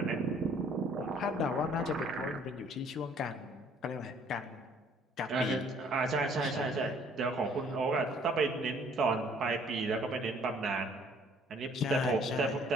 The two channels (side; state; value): both; normal; correlation 0.59